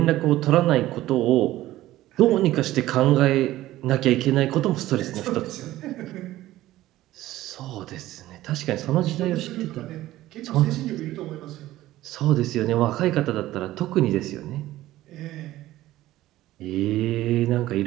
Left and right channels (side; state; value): left; quieter; 15.5 dB